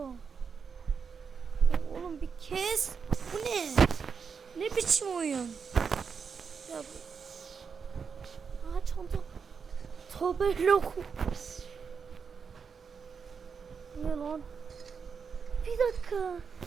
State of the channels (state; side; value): quieter; left; 6.0 dB